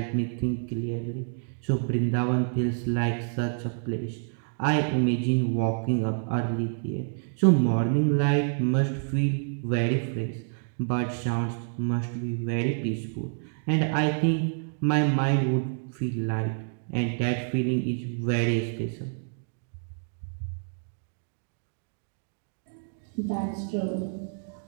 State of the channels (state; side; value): silent; left; digital silence